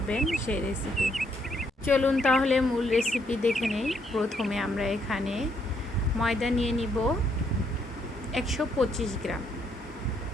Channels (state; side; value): normal; both; correlation 0.73